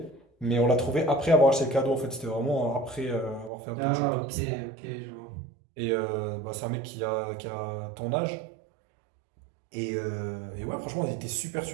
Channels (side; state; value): left; drops out; at 3.5 s